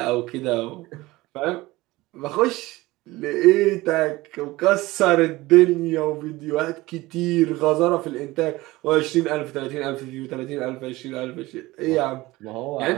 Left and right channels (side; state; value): left; quieter; 19.6 dB